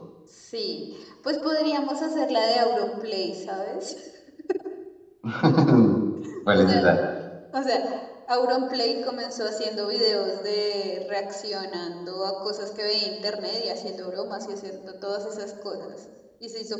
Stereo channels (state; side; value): identical; both; correlation 1.00